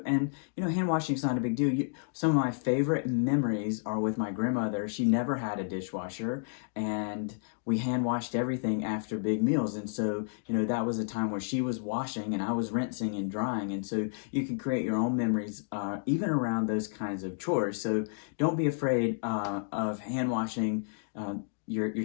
hand washing is not a big deal. Some of my favorite memories are with my grandmother. She never had a dishwasher, and we hand washed everything after big meals. And so, that was a time where she was washing and I was rinsing and drying. And so you can create your own memories, even around those kinds of chores. So don't be afraid of hand washing your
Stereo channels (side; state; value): right; silent; digital silence